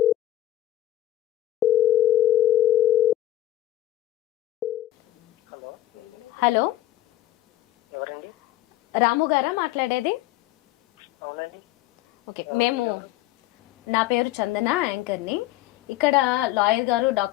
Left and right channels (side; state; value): right; quieter; 14.5 dB